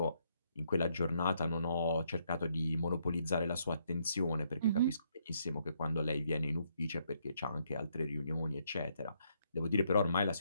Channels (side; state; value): both; inverted; correlation -0.73